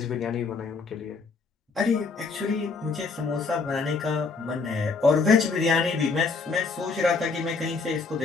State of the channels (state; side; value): quieter; right; 4.4 dB